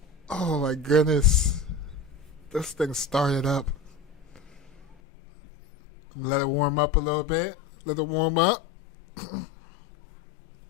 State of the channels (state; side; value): drops out; right; at 5.0 s